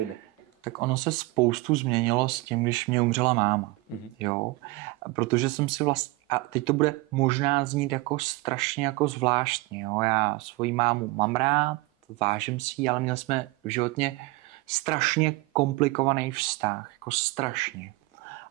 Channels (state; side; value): quieter; left; 22.4 dB